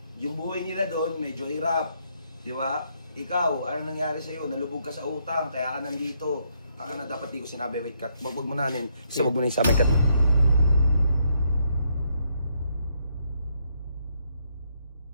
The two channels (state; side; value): inverted; both; correlation -0.74